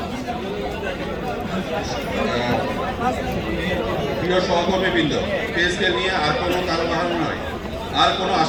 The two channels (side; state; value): both; identical; correlation 1.00